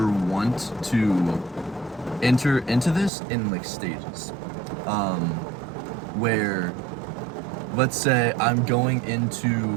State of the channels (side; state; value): left; drops out; at 3.1 s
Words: want to enter into this in like stages. Where, let's say I'm going